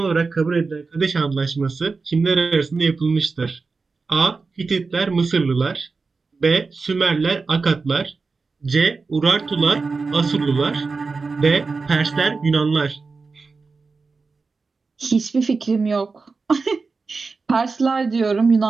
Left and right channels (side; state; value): left; quieter; 4.3 dB